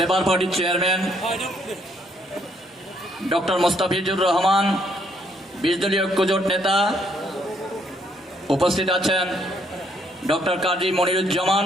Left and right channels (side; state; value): both; normal; correlation 0.70